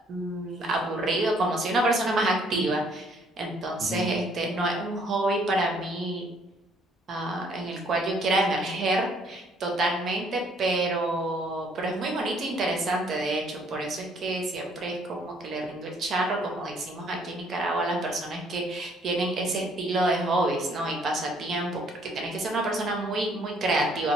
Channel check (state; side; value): normal; both; correlation 0.63